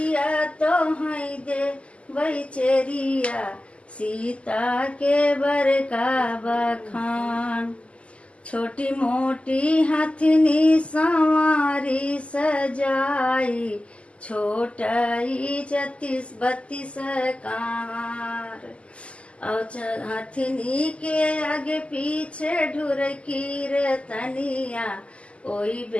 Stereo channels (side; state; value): right; late; 0.058 ms